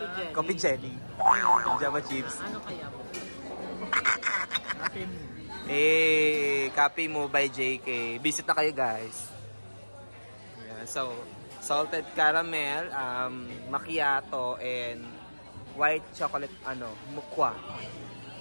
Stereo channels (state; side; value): inverted; both; correlation -1.00